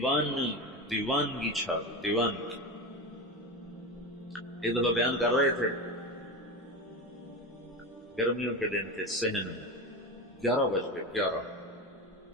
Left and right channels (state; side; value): normal; both; correlation 0.22